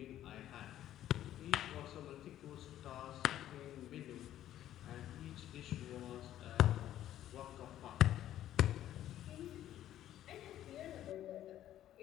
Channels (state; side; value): quieter; right; 12.3 dB